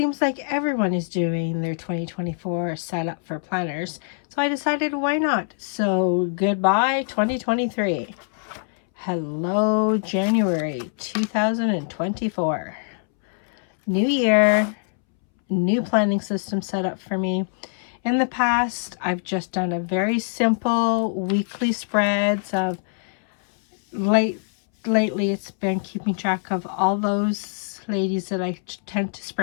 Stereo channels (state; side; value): silent; right; 63 dB below the other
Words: like everyone is doing their 2024 setup for planners, so I decided why not? So goodbye 2023. Hello January 2024. New year, new planning system set up for me. In the past, I've just done a very simple weekly spreads of lately it's been keeping track of all those ladies that I tend to